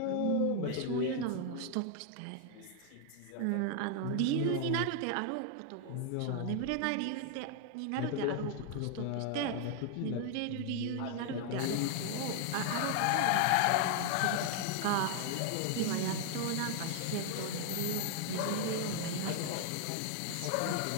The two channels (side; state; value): both; different; correlation 0.00